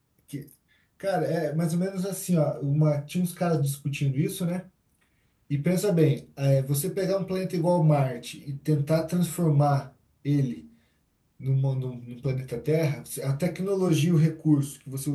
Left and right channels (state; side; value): identical; both; correlation 1.00